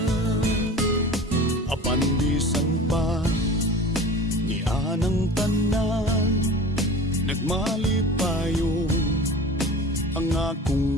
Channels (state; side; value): normal; both; correlation 0.37